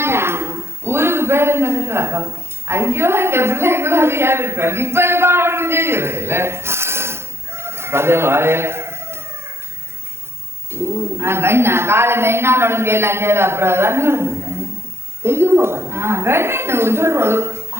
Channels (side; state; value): left; late; 0.12 ms